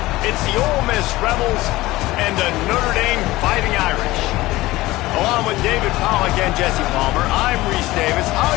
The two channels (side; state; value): right; quieter; 18.4 dB